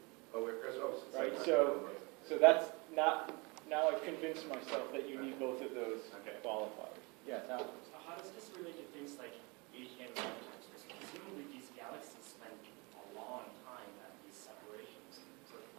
with Chris? Right, so that's not, now I've convinced myself that you need both of those qualifiers. Yeah, Tom? So how does this relate to things like AGN lifetimes? Presumably these galaxies spend a long time at these separations. So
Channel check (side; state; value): left; quieter; 28.1 dB